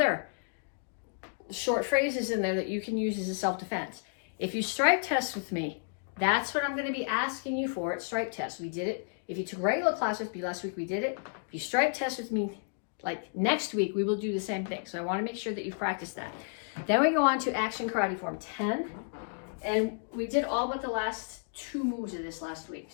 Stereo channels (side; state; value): right; silent; digital silence